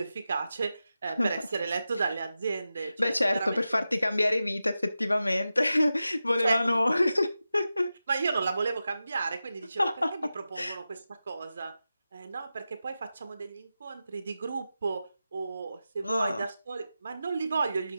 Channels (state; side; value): inverted; both; correlation -0.92